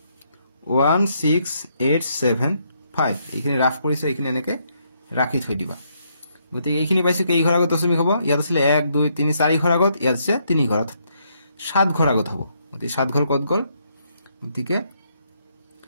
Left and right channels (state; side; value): inverted; both; correlation -0.74